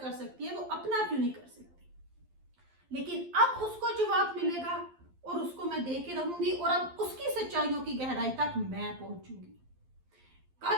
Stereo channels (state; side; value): late; left; 12 ms